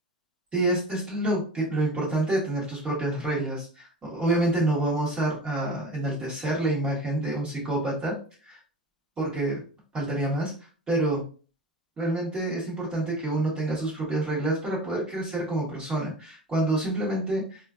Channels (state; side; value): normal; both; correlation 0.36